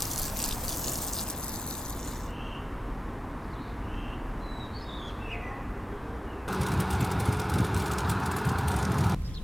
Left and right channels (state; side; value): normal; both; correlation 0.93